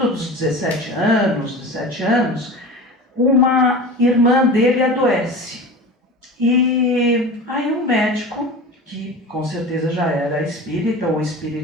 dos 17 anos, uma irmã dele adoece. E aí um médico, que com certeza já era espírita ou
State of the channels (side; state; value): both; normal; correlation 0.33